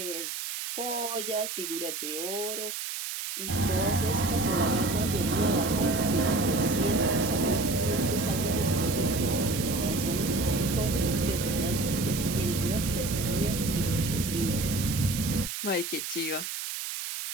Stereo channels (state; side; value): noise; right; hiss, 5 dB below the sound